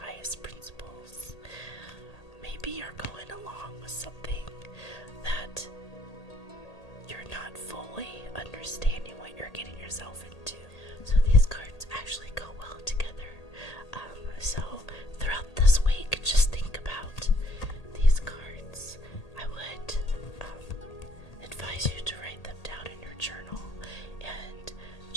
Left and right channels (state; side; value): late; right; 1.8 ms